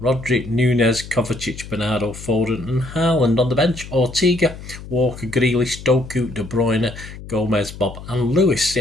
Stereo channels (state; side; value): noise; left; hum, 14 dB below the sound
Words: Nunez, Kovacic, Bernardo, Foden and Haaland. On the bench, Ortega, Walker, Grealish, Doku, De Bruyne, Gomez, Bob and Lewis.